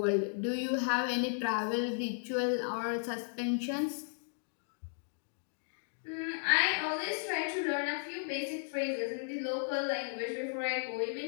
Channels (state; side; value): silent; right; digital silence